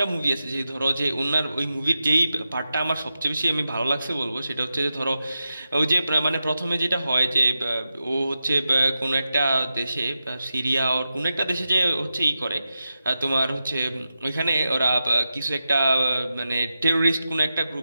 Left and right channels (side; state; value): both; inverted; correlation -0.90